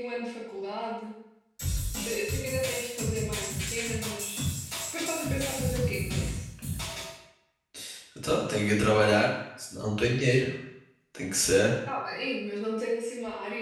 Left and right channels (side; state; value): both; identical; correlation 1.00